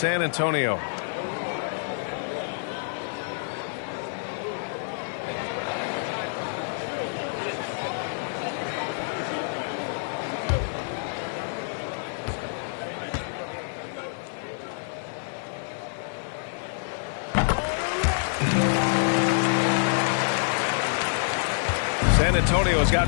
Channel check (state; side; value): silent; right; 55 dB below the other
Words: Antonio. San Antonio has